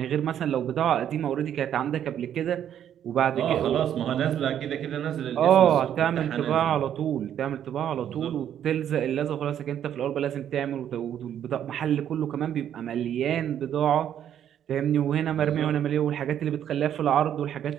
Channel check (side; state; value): left; quieter; 10.0 dB